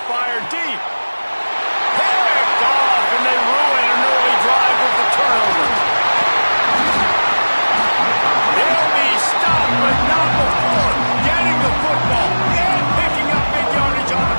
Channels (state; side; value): inverted; both; correlation -1.00